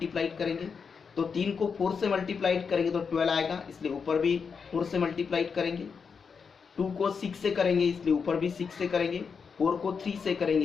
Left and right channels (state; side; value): quieter; right; 5.8 dB